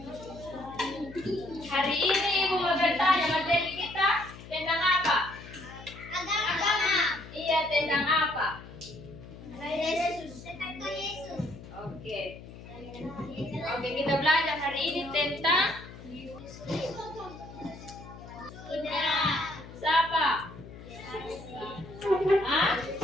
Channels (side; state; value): left; noise; hum, 15 dB below the sound